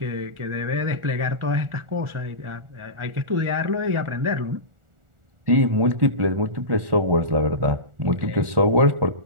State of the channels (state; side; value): late; left; 1.4 ms